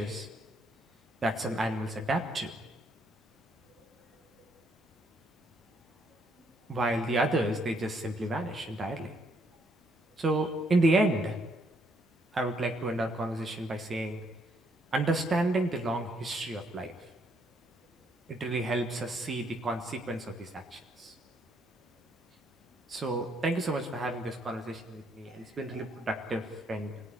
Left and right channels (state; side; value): normal; both; correlation 0.71